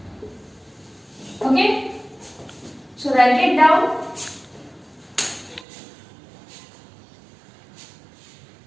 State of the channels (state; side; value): drops out; left; at 5.7 s